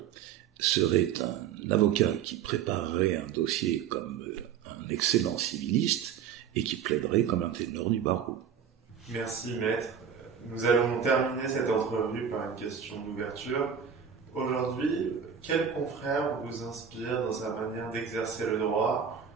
serait un avocat qui préparerait un dossier comme un excellent civiliste et qui plaiderait comme un ténor du barreau. Merci maître. Nous allons terminer cette entrevue par une question d'ouverture. Aujourd'hui, quel confrère vous inspire dans sa manière d'exercer le droit,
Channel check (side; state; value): left; quieter; 7.8 dB